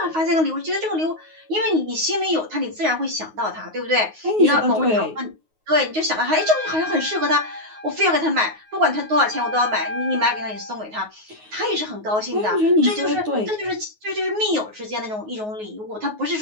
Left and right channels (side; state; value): left; late; 9.4 ms